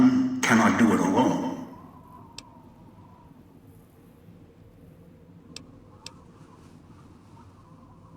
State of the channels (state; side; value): identical; both; correlation 1.00